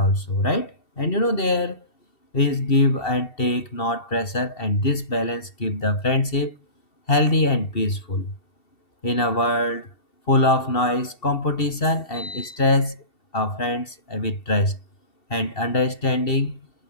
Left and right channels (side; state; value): right; late; 2.7 ms